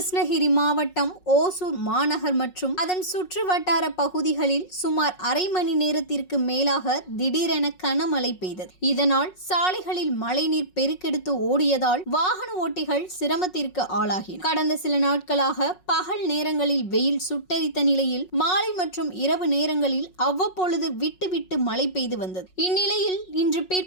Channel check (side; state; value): right; late; 5.5 ms